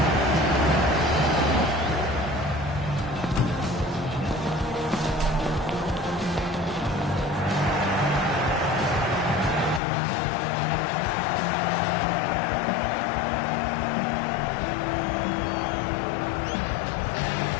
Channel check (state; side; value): drops out; right; at 9.8 s